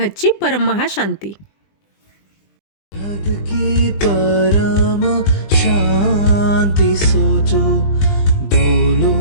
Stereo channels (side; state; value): right; late; 20 ms